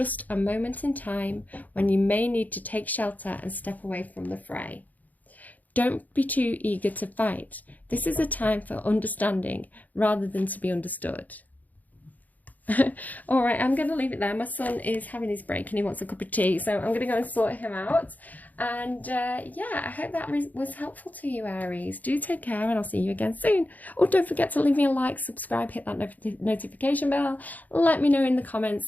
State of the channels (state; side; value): late; right; 0.080 ms